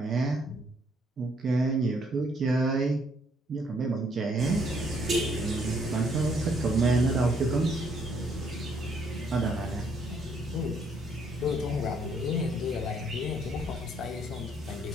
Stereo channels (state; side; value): normal; both; correlation 0.68